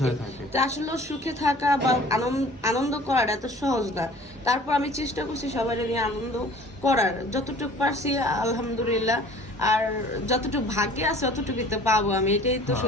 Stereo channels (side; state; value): both; normal; correlation 0.49